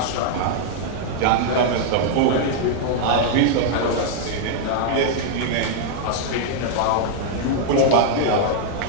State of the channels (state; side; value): different; both; correlation -0.01